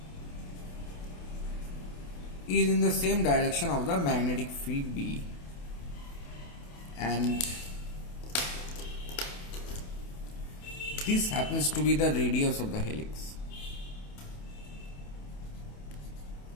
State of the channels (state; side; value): late; right; 28 ms